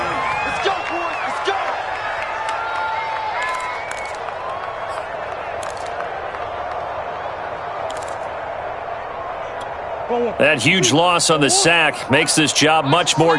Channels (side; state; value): both; identical; correlation 1.00